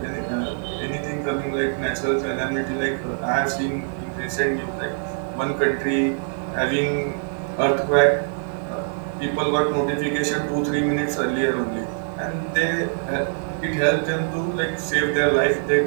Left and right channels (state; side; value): silent; left; digital silence